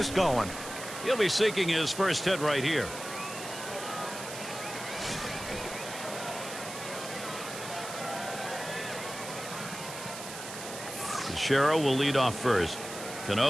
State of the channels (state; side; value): noise; right; hiss, 10 dB below the sound